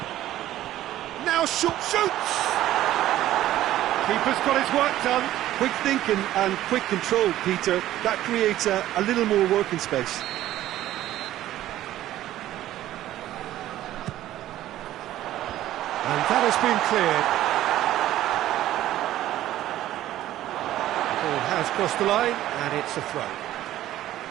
Now shoots! Keeper's got his work done. Quick thinking and quick control, Peter. That creates a little more working space. And that has been cleared. The ball has crossed the line, and it's a throw.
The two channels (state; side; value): quieter; left; 13.7 dB